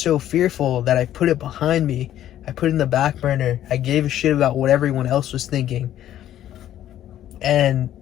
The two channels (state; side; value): quieter; right; 12.0 dB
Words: fearful that I put it behind me. I put it in the back burner. I gave a shit about what everyone else was thinking. And